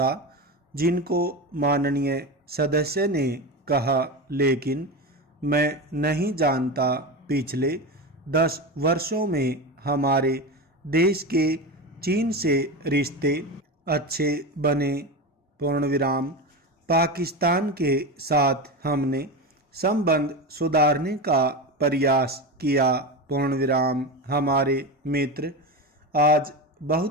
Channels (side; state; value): both; normal; correlation 0.21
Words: जिनको माननीय सदस्य ने कहा, लेकिन मैं नहीं जानता पिछले 10 वर्षों में हमारे देश के चीन से रिश्ते अच्छे बने। पूर्णविराम। पाकिस्तान के साथ हमने संबंध सुधारने का प्रयास किया। पूर्णविराम। हमारे मित्र आज